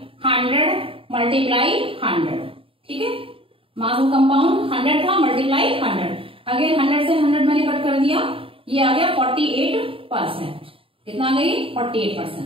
100 मल्टीप्लाई 100, ठीक है। मास ऑफ कंपाउंड 100 था मल्टीप्लाई 100। अगेन 100 से 100 मैंने कट कर दिया, ये आ गया 48%। कितना आ गई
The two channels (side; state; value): left; late; 0.26 ms